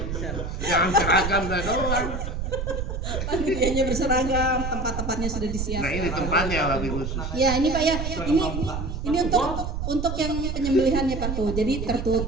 Jangan seragam dah doang. Panitianya berseragam, tempat-tempatnya sudah disiapkan. Nah ini tempatnya lagi khusus. Ya ini Pak ya, ini untuk yang penyembelihannya Pak tuh. Jadi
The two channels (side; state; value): right; noise; rumble, 4 dB below the sound